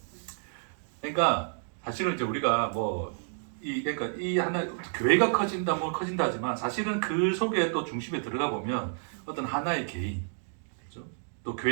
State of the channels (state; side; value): silent; left; digital silence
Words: 그러니까 사실은 이제 우리가 그러니까 이 하나 교회가 커진다 커진다 하지만 사실은 그 속에 또 중심에 들어가 보면 어떤 하나의 개인, 그렇죠? 또